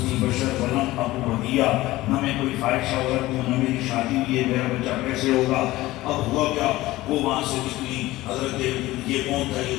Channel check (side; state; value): right; quieter; 17.8 dB